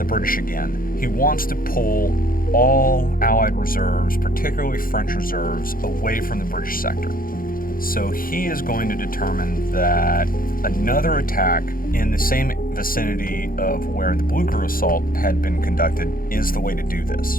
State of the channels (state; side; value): late; right; 0.41 ms